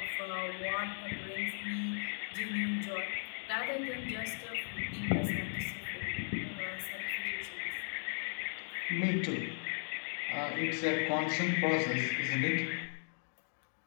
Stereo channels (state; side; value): silent; right; digital silence